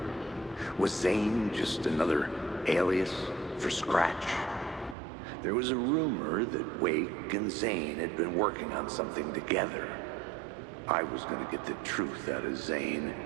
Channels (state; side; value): drops out; left; at 5.0 s